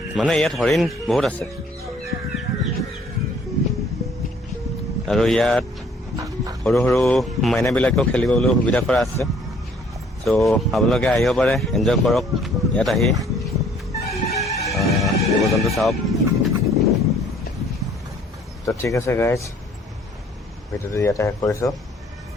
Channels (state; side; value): normal; both; correlation 0.59